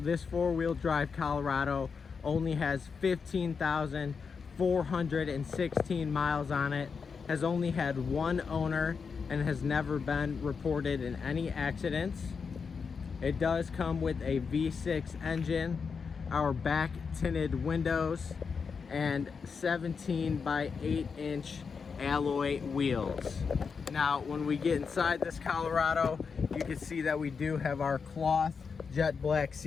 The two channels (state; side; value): quieter; right; 5.6 dB